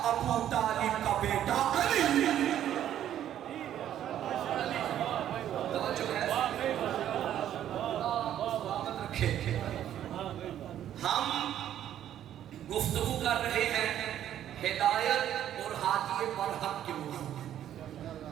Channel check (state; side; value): quieter; left; 11.1 dB